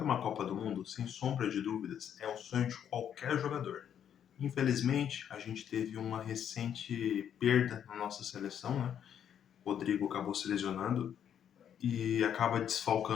uma Copa do Mundo, sem sombra de dúvidas, é o sonho de qualquer jogador. Infelizmente, a gente teve uma recente perda na nossa seleção, né? O Rodrigo acabou se lesionando e acaba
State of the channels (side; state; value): right; quieter; 9.1 dB